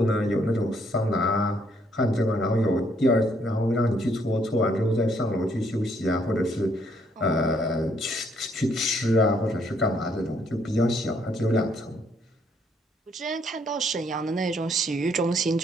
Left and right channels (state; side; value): normal; both; correlation 0.69